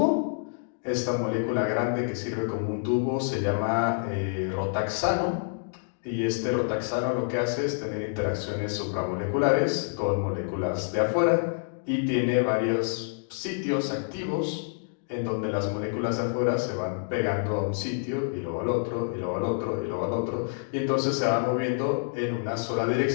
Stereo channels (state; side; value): silent; right; digital silence